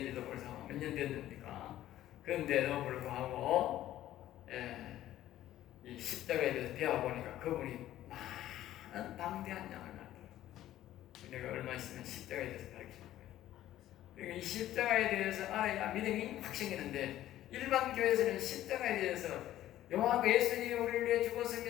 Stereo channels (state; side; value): quieter; right; 13.5 dB